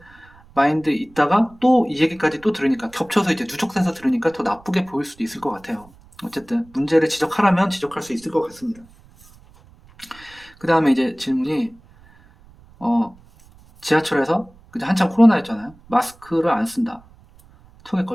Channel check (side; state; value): right; noise; rumble, 26 dB below the sound